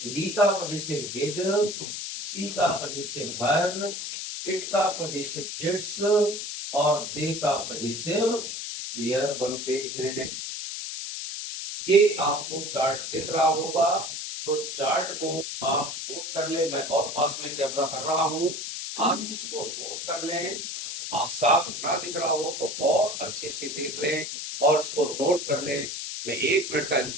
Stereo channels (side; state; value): left; noise; hiss, 6 dB below the sound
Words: वी का पजेसिव भेज, सी का पजेसिव भर, इट का पजेसिव इट्स, और दे का पजेसिव देयर बनते हैं। ये आपको चार्ट दिख रहा होगा, तो चार्ट को आप नोट कर ले। मैं और पास में कैमरा कर रहा हूं, आप इसको नोट कर लें। साफ ना दिख रहा हो तो और अच्छे से देख लें और इसको नोट कर लें। मैं 1 मिनट का